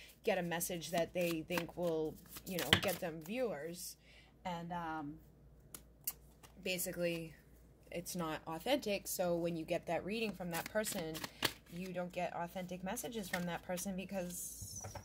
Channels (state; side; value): identical; both; correlation 1.00